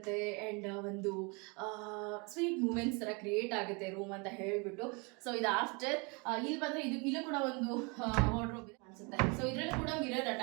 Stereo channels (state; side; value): quieter; left; 31.0 dB